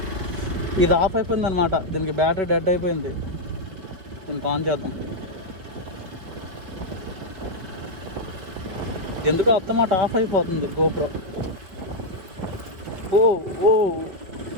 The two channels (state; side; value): late; left; 5.2 ms